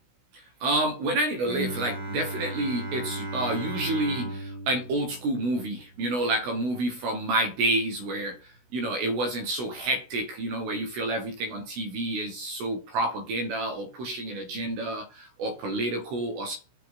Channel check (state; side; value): late; left; 16 ms